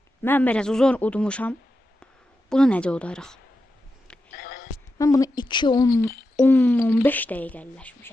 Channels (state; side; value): normal; both; correlation 0.89